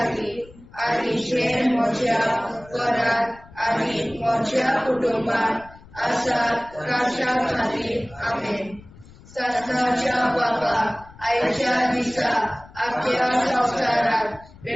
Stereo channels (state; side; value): noise; left; rumble, 22 dB below the sound